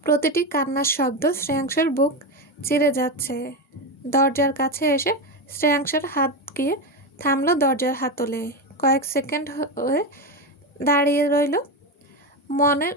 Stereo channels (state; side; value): normal; both; correlation 0.15